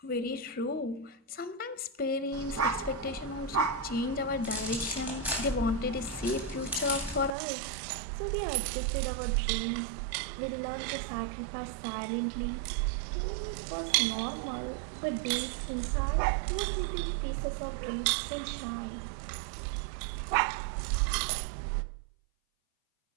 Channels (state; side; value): drops out; left; at 7.3 s